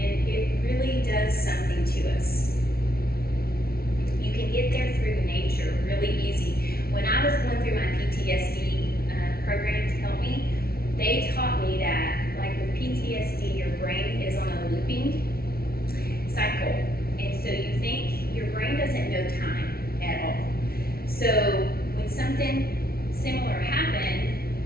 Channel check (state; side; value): late; right; 0.44 ms